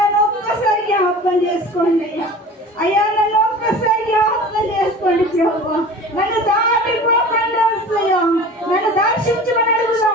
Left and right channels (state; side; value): normal; both; correlation 0.39